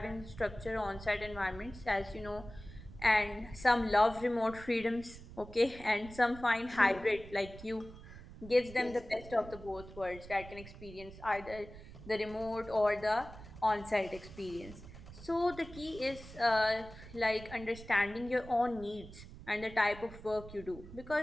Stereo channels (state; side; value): noise; right; rumble, 15 dB below the sound